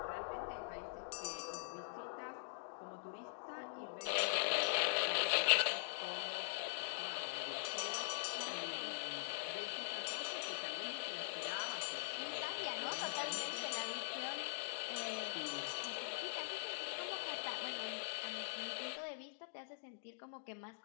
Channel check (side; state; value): right; silent; digital silence